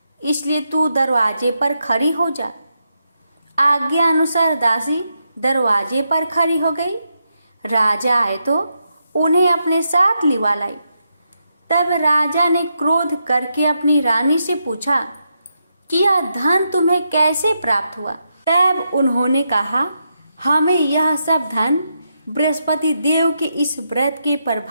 इसलिए तू दरवाजे पर खड़ी हो जा। आज्ञा अनुसार दासी दरवाजे पर खड़ी हो गई। राजा आए तो उन्हें अपने साथ लिवा लाई। तब राजा ने क्रोध करके अपनी रानी से पूछा कि यह धन तुम्हें कैसे प्राप्त हुआ? तब उन्होंने कहा, हमें यह सब धन बृहस्पति देव के इस व्रत के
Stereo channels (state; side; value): inverted; both; correlation -0.83